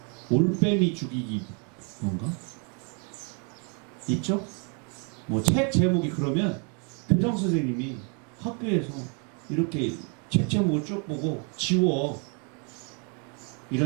올빼미 죽이기 뭔가? 있죠? 뭐 책 제목이 그러면 교장 선생님이 학교에서 이렇게 책 제목을 쭉 보고 지워.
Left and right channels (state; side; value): quieter; left; 37.3 dB